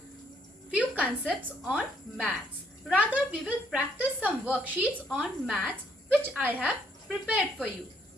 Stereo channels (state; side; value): normal; both; correlation 0.68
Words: few concepts on maths. Rather, we will practice some worksheets on maths which I have prepared for you.